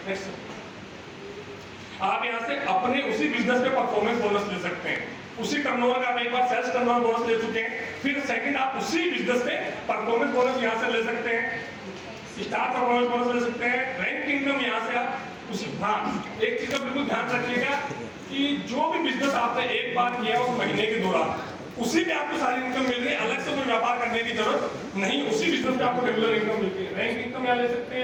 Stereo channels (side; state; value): both; identical; correlation 1.00